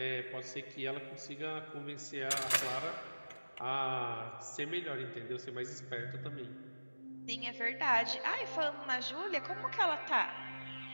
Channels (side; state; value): both; inverted; correlation -1.00